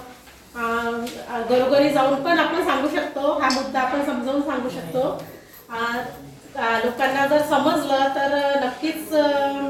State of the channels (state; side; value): identical; both; correlation 1.00